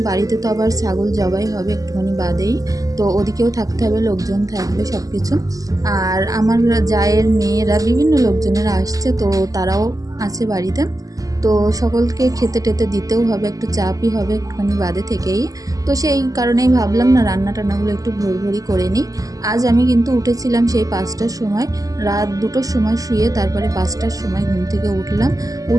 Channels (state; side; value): late; left; 0.17 ms